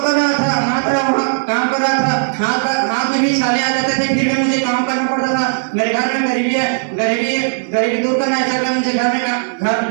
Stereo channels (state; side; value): silent; left; digital silence